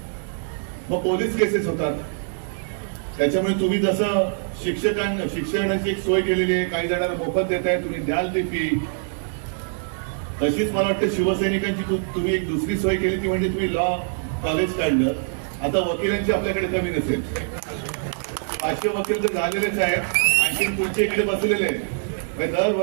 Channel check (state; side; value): silent; left; digital silence